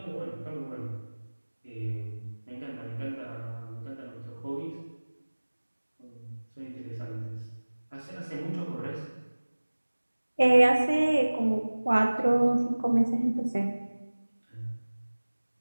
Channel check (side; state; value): both; inverted; correlation -1.00